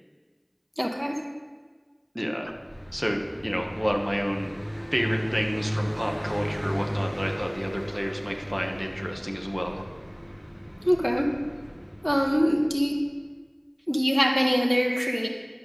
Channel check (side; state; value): both; identical; correlation 1.00